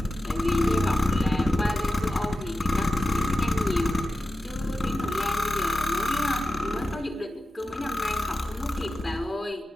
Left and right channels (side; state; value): both; normal; correlation 0.92